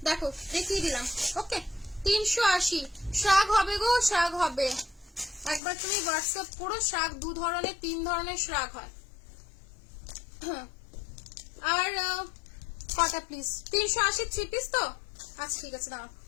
দেখো দেখিয়ে দিলাম। ওকে, 380। শ্রাগ হবে গো, শ্রাগ হবে। একবার তুমি হোয়াটসঅ্যাপ করো, শ্রাগ 2 ধরনের 3 ধরনের শ্রাগ হয়। আর কটা প্লিজ? 380 3 পিস তো? আচ্ছা ঠিক আছে, দাঁড়াও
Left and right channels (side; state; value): right; drops out; at 5.6 s